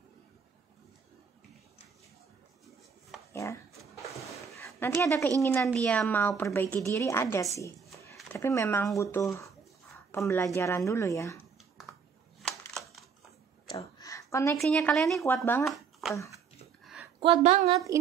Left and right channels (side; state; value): left; quieter; 6.2 dB